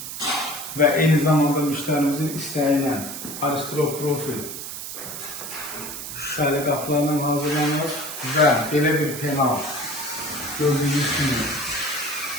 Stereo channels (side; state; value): right; noise; hiss, 8 dB below the sound